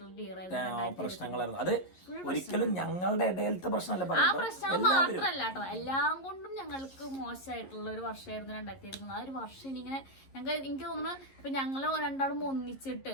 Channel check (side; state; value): right; late; 11 ms